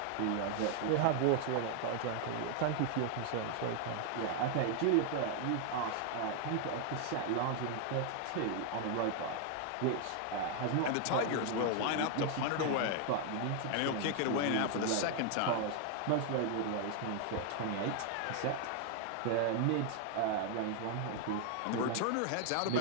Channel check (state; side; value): different; both; correlation 0.00